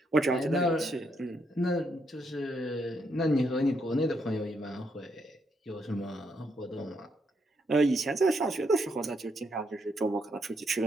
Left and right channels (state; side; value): normal; both; correlation 0.77